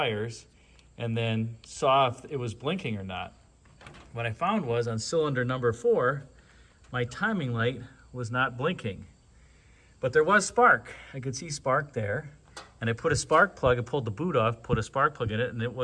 and then saw if it was blinking or not. What I found was on cylinder number 4, my timing light was not blinking. But there was spark. I could see spark there. And I put a spark plug, I pulled the boot off, put a spark plug in it, and it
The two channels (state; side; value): identical; both; correlation 1.00